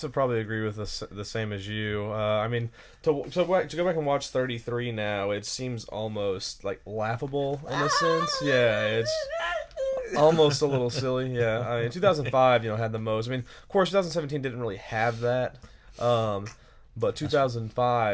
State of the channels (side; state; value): both; identical; correlation 1.00